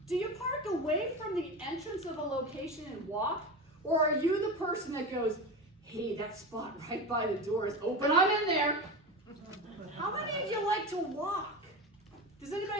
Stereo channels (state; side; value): normal; both; correlation 0.24